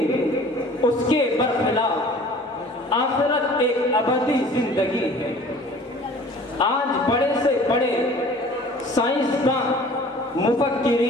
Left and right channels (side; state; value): both; normal; correlation 0.48